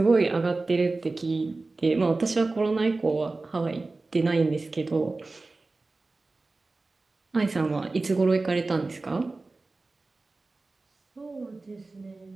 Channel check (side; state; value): left; quieter; 3.4 dB